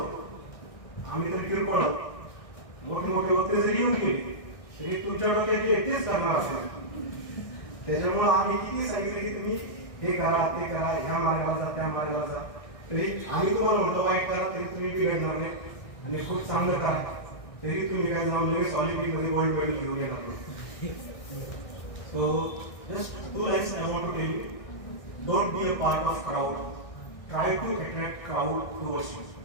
आम्ही तर किरकोळ मोठे मोठे वक्ते जरी येऊन गेले तरी तुमच्या डोक्यात जे तेच करणार असेल. त्याच्यामुळे आम्ही किती सांगितलं की तुम्ही हे करा ते करा, ह्या मार्गाला जा त्या मार्गाला जा, तरी आम्ही तुम्हाला म्हणतो वाईट करा तरी तुम्ही बिघडणार नाही आणि खूप चांगलं करा तरी तुम्ही काय जाऊन लगेच ऑलिम्पिकमध्ये गोल्ड मेडल घेऊन येणार नाही. So just 2 lines I want to tell you. Don't be a part of crowd. Try to attract crowd towards you.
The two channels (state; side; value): late; right; 1.6 ms